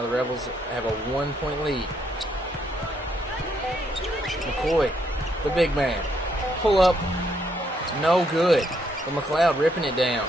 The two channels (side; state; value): both; normal; correlation 0.74